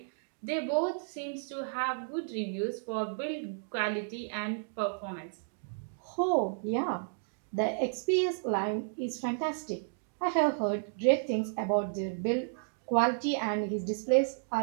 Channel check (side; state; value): left; silent; digital silence